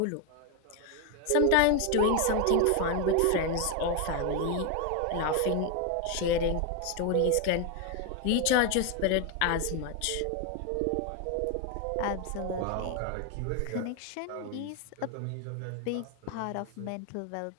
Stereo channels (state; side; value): different; both; correlation 0.01